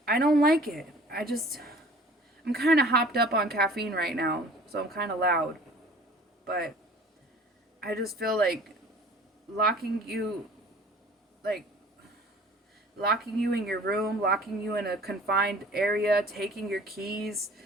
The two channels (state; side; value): normal; both; correlation 0.49